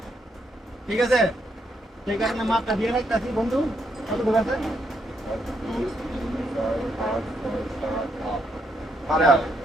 ঠিক আছে, সেই কারণে মাপটা দিয়ে রাখতেছি। বন্ধু কতটুকু আছে?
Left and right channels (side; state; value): both; normal; correlation 0.77